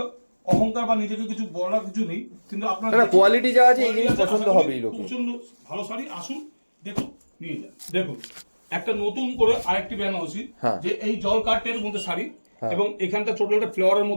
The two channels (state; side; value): inverted; both; correlation -1.00